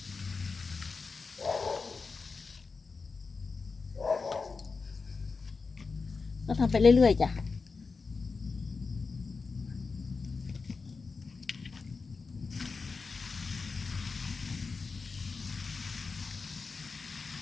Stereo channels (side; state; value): right; quieter; 4.6 dB